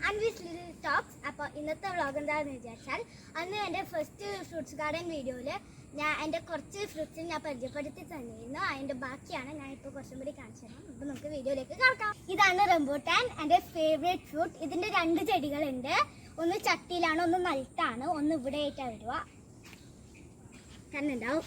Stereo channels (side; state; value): both; identical; correlation 1.00